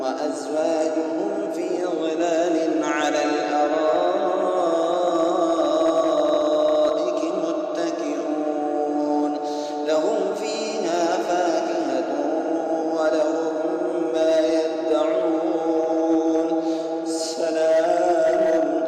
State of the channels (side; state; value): both; identical; correlation 1.00